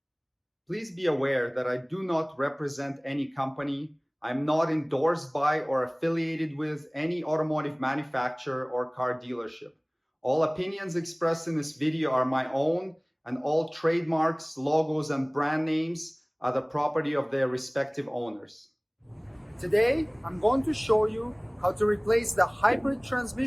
Please be aware that I do not represent any company. I'm not endorsed by or affiliated with any automotive manufacturer or car dealership. All opinions expressed in this video are my own, and all trademarks, logos, and brand names are the property of their respective owners. Today, I'm going to show you how to replace the hybrid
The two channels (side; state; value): both; identical; correlation 1.00